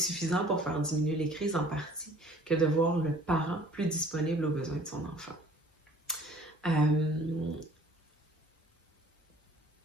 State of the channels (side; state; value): both; normal; correlation 0.52